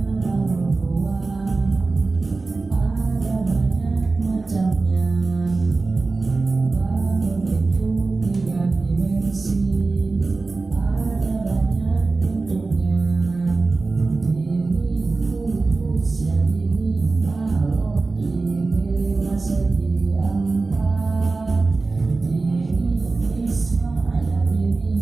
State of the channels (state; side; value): quieter; left; 3.7 dB